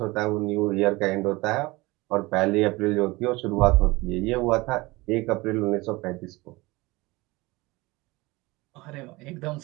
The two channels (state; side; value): quieter; left; 22.3 dB